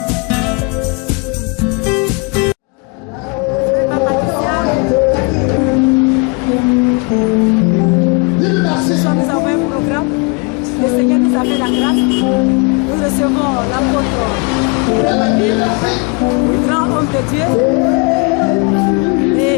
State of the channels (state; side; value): quieter; right; 31.2 dB